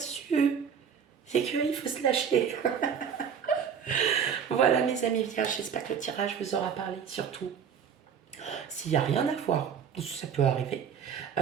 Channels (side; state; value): left; quieter; 7.4 dB